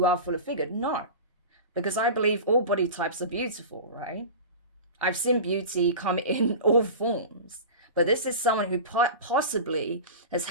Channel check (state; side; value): inverted; both; correlation -0.30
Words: are full of figured. No, because I believe all body types are beautiful, right? I've seen beauty come in all forms, but this is someone who possibly has